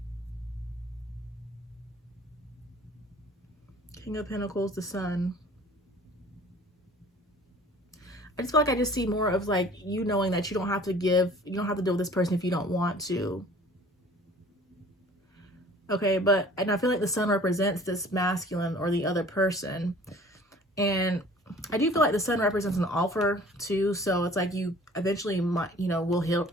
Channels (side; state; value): both; normal; correlation 0.49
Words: King of Pentacles, the Sun. I just feel like I just see more of like you knowing that you don't have to deal with this person if you don't want to. Okay, and I feel like the sun represents this masculine or the other person. And I do feel like the sun represents an offer too. So it's like you eventually might, will